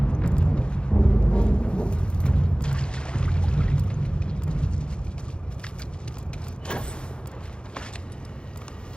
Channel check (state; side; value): late; right; 0.052 ms